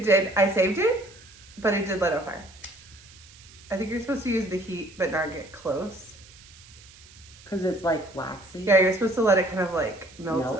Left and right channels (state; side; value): noise; right; hiss, 22 dB below the sound